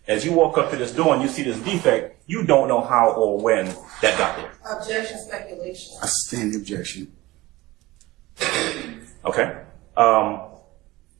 As you walk up to this door and you see this defect, you don't know how or when that got there. Objection, speculation. I stand the objection. Okay.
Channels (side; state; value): left; quieter; 19.4 dB